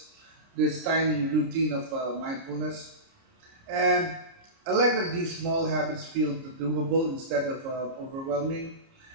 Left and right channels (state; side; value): late; left; 30 ms